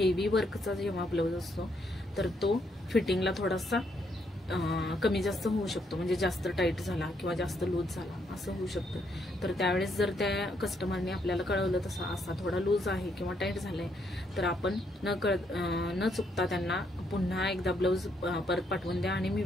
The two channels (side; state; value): both; normal; correlation 0.74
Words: वर्कचा जेव्हा ब्लाऊज असतो तर तो फिटिंगला थोडासा कमी जास्त होऊ शकतो, म्हणजे जास्त टाईट झाला किंवा जास्त लूज झाला असं होऊ शकतं. तर त्यावेळेस जर त्या कस्टमरने आपल्याला कळवलं तसं असा थोडा लूज आहे किंवा टाईट झालाय तर आपण न चुकता त्यांना पुन्हा एकदा ब्लाऊज परत पाठवून द्या आणि मी